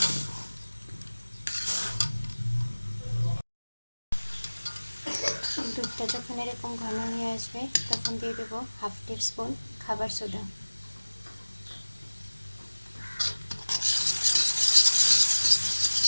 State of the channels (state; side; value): inverted; both; correlation -1.00